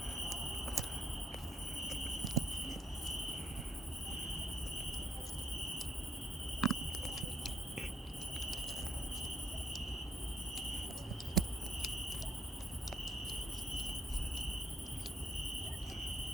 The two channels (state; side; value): normal; both; correlation 0.66